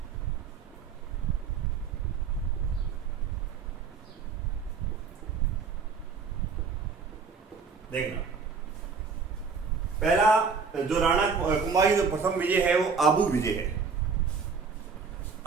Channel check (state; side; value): quieter; left; 5.4 dB